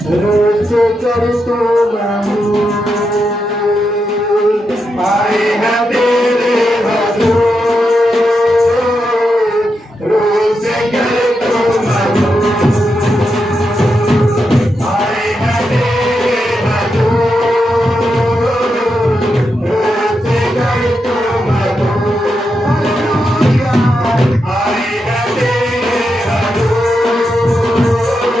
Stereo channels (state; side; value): normal; both; correlation 0.85